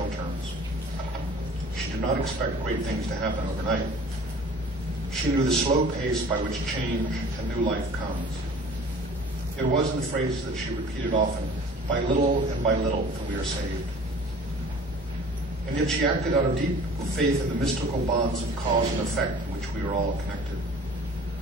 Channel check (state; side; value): normal; both; correlation 0.47